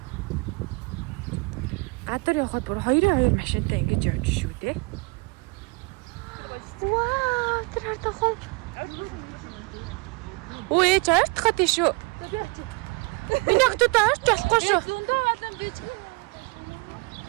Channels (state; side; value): quieter; left; 28.0 dB